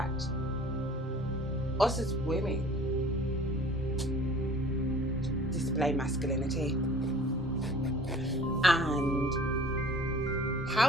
us as women display masculinity and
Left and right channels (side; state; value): both; normal; correlation 0.48